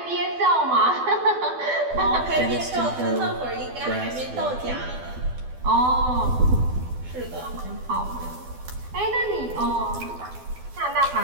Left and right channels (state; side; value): late; left; 12 ms